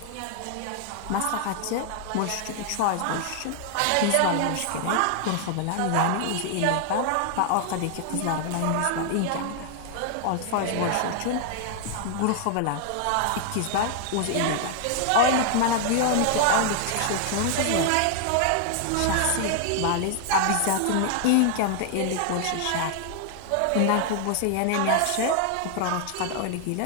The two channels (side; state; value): both; different; correlation 0.00